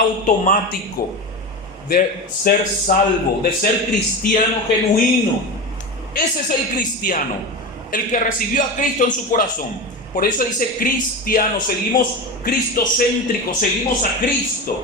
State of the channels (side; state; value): both; normal; correlation 0.24